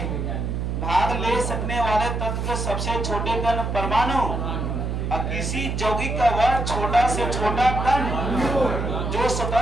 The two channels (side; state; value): right; noise; hum, 2 dB below the sound